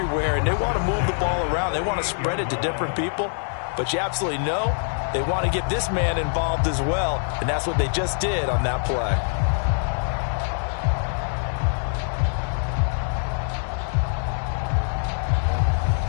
And they want to move the ball around. They want to spread it to different people. But you absolutely know they want to get this man involved as well, and that's what they just did on that play.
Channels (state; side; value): silent; right; digital silence